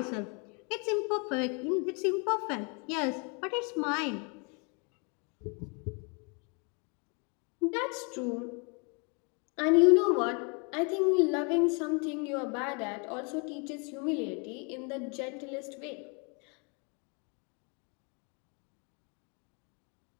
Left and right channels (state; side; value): quieter; right; 34.3 dB